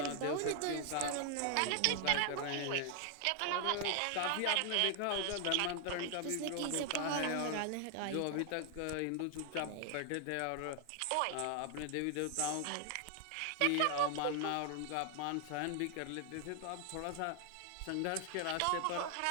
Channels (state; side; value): different; both; correlation 0.00